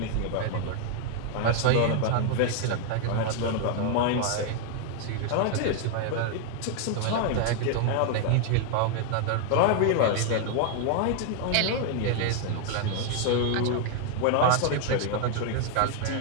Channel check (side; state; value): both; different; correlation 0.00